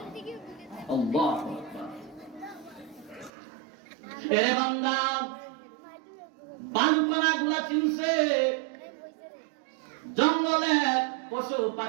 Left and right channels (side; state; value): left; drops out; at 3.3 s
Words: বালুকণা গুলা চিনছে, জঙ্গলের পশু